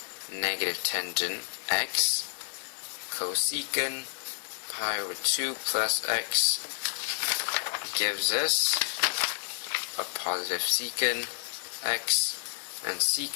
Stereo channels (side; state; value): right; silent; 58 dB below the other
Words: negative tangent x, cosecant pi over 2 plus x gives us a positive secant x, and